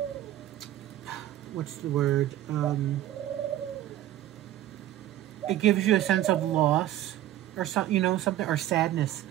what's the word? It gives you a sense of loss, or something, something, or sadness.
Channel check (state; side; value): quieter; left; 13.4 dB